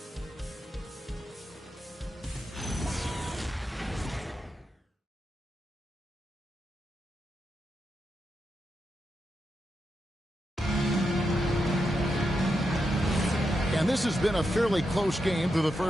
And this has been a fairly close game through the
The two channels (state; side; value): normal; both; correlation 0.86